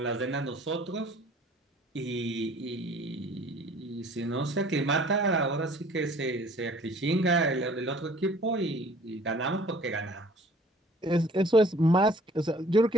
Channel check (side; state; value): both; normal; correlation 0.53